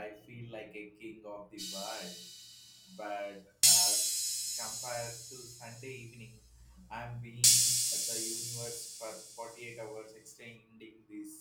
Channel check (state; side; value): identical; both; correlation 1.00